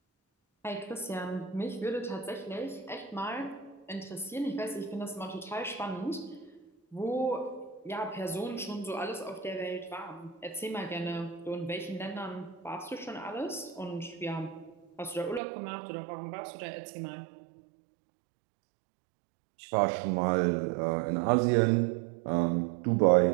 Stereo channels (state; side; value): drops out; left; at 15.4 s